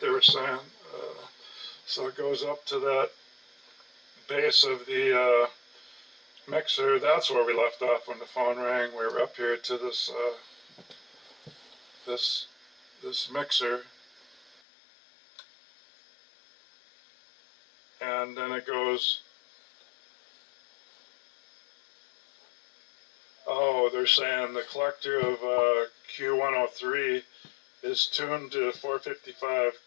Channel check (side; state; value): right; drops out; at 14.6 s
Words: were saying. So it goes up to that base of the mixer. That's where we left off when the phone rang. We were up here to this this mixer, and then it goes. Oh, they're saying the collector of Q103 is tuned to 455